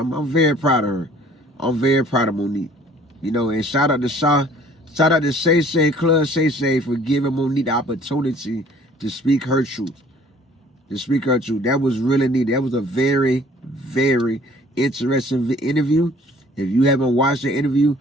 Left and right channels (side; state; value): both; normal; correlation 0.54